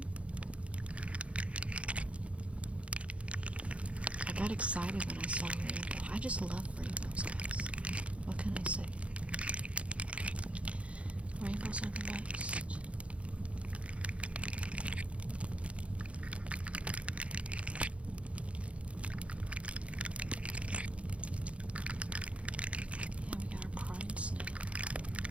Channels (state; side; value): late; left; 0.062 ms